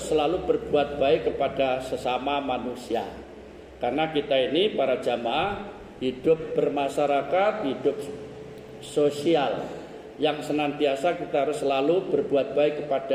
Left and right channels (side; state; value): both; identical; correlation 1.00